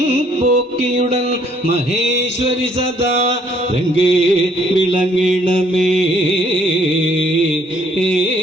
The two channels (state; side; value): normal; both; correlation 0.64